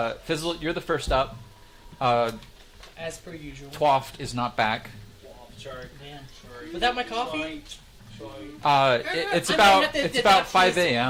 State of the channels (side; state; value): both; identical; correlation 1.00